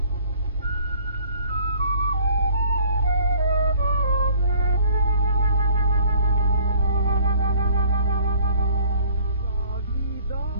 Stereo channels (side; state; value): both; inverted; correlation -0.53